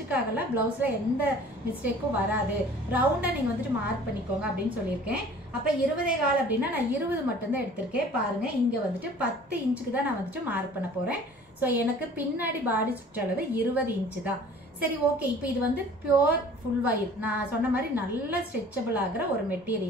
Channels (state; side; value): normal; both; correlation 0.48